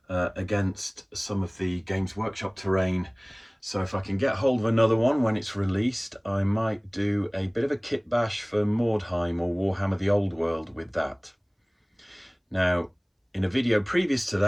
against some of the Games Workshop terrain. So if I can get hold of another one when it's released, I might do a bit of a kit bash for Mordheim or Warhammer the Old World with that. Now, in a video previous to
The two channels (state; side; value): identical; both; correlation 1.00